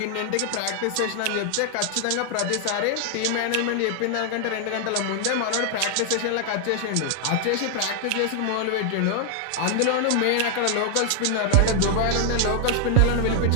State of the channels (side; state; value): both; different; correlation 0.00